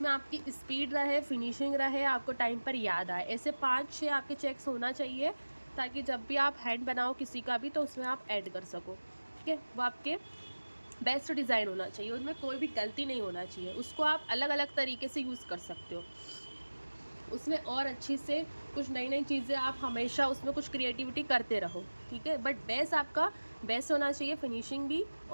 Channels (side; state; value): both; inverted; correlation -1.00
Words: आपकी स्पीड रहे, फिनिशिंग रहे, आपको टाइम पर याद आए। ऐसे 5-6 आपके चेक्स होना चाहिए ताकि जब भी आप हैंड बनाओ किसी का भी तो उसमें आप ऐड कर सको, ठीक है। वो आपके बेस्ट डिज़ाइन होना चाहिए, उनमें कोई भी गलती नहीं होना चाहिए। उसको आप अलग अलग तरीके से यूज़ कर सकते हो, उसमें और अच्छी से कुछ नई नई चीज़ें आप हमेशा उसमें कुछ क्रिएटिविटी करते रहो, ठीक है। बट बेस आपका बेस्ट होना चाहिए, फिनिशिंग भी